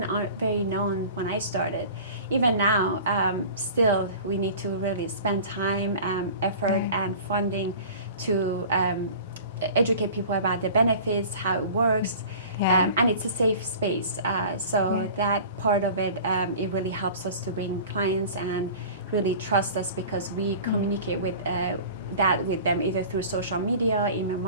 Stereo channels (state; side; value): inverted; both; correlation -0.41